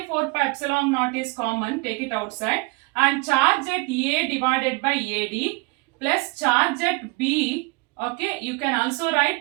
4 pi epsilon naught is common, take it outside, and charge at A divided by AD plus charge at B, okay, you can also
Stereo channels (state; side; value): quieter; left; 27.9 dB